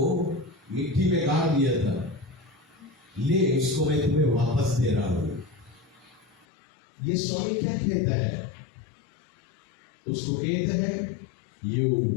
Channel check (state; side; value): drops out; right; at 6.5 s